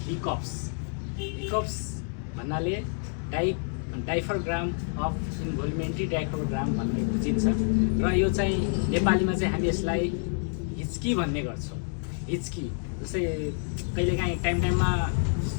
hiccups. Hiccups भन्नाले डाइफरग्राम of इन्भोल्युमेन्ट्री डाइफरग्राम भन्ने बुझिन्छ र यो चाहिँ नेपालीमा चाहिँ हामी यसलाई हिच्की भन्ने गर्छौँ। हिच्की जस्तै कहिलेकाहीँ टाइममा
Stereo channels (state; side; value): silent; right; 59 dB below the other